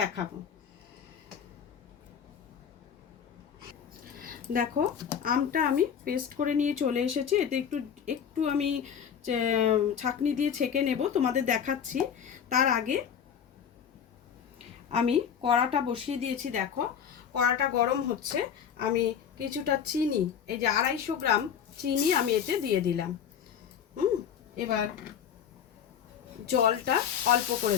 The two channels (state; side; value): quieter; right; 8.0 dB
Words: দেখো, আমটা আমি পেস্ট করে নিয়ে চলে এসেছি। এতে একটু একটু আমি ছাঁকনি দিয়ে ছেঁকে নেব, তোমাদের দেখাচ্ছি। তার আগে আমি কড়াটা বসিয়ে দিয়েছি। দেখো, কড়াটা গরম হচ্ছে। আমি কিছুটা চিনি, এই যে 250 গ্রাম চিনি আমি এতে দিয়ে দিলাম। এবার জলটা অল্প করে